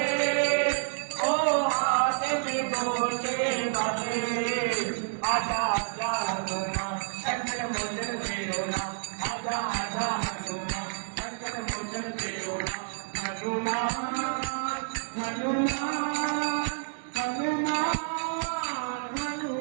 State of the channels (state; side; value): silent; left; digital silence